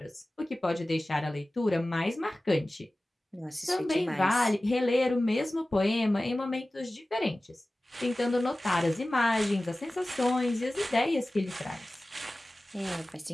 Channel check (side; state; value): both; normal; correlation 0.97